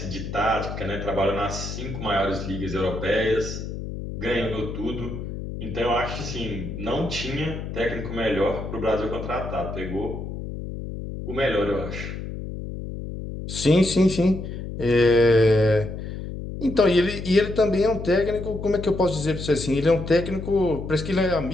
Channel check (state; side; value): noise; left; hum, 7 dB below the sound